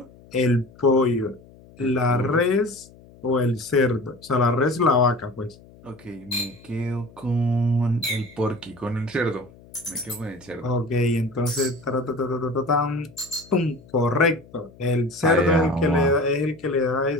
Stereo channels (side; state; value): left; noise; hum, 24 dB below the sound